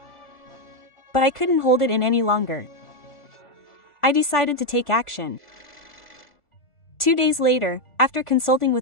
But I couldn't hold it in any longer. I decided to take action. 2 days later, after consulting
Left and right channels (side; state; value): right; late; 1.4 ms